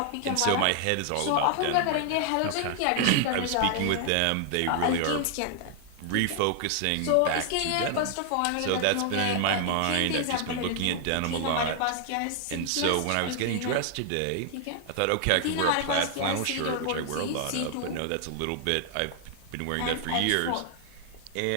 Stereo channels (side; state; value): both; different; correlation 0.00